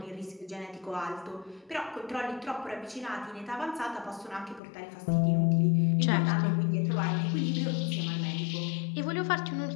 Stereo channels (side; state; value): right; drops out; at 4.6 s